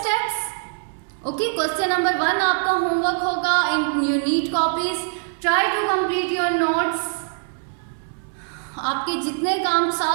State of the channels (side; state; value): left; silent; digital silence